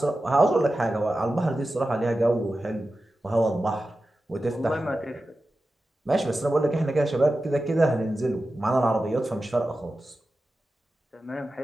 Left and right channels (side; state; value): both; normal; correlation 0.93